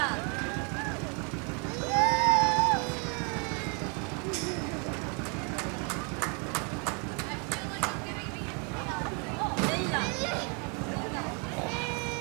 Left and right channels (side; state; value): left; quieter; 35.3 dB